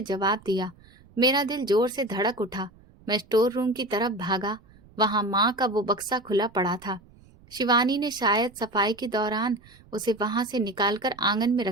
जवाब दिया। मेरा दिल जोर से धड़क उठा। मैं स्टोर रूम की तरफ भागा। वहां माँ का वो बक्सा खुला पड़ा था। शिवानी ने शायद सफाई के दौरान उसे वहां से निकालकर आंगन में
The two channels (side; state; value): right; noise; rumble, 26 dB below the sound